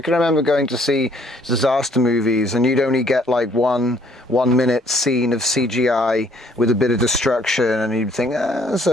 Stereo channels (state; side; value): normal; both; correlation 0.63